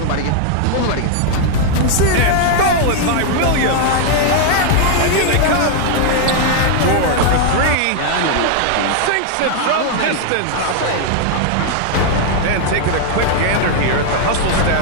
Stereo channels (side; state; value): both; different; correlation 0.00